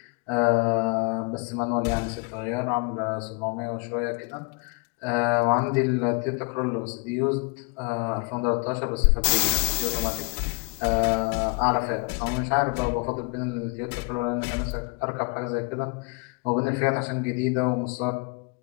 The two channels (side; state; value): right; quieter; 31.9 dB